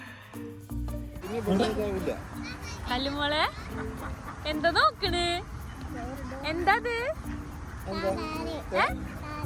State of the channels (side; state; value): both; identical; correlation 1.00